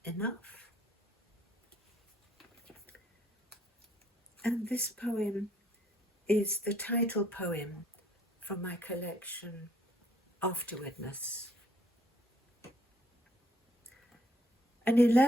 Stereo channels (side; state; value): both; normal; correlation 0.66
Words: enough? And this poem is the title poem from my collection, Afterwardness. An